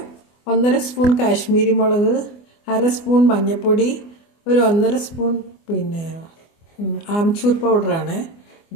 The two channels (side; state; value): right; late; 24 ms